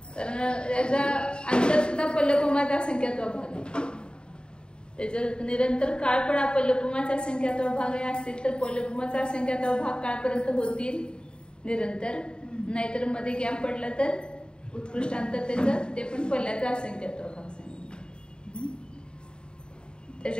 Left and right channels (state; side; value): late; right; 0.050 ms